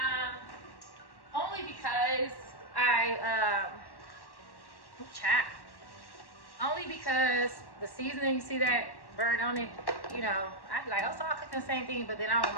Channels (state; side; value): late; right; 1.1 ms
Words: Only because only because the seasoning, you see that burn on it, you know, I'd be like, oh, so I'll cook the same thing, but then I don't want